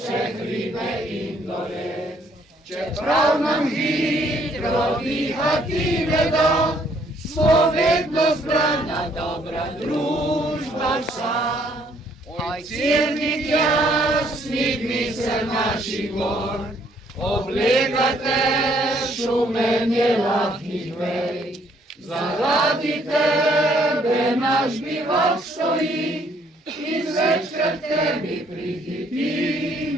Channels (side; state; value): both; normal; correlation 0.66